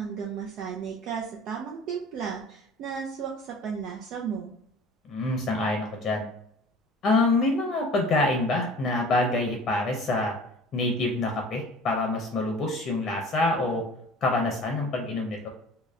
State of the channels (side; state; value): both; normal; correlation 0.44